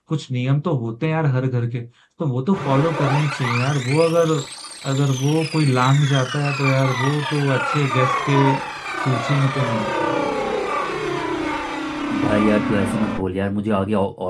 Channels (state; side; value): identical; both; correlation 1.00